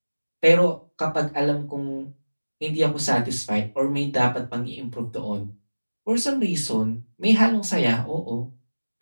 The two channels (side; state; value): both; inverted; correlation -1.00